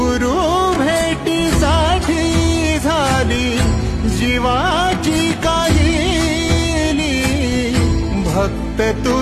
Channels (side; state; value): both; identical; correlation 1.00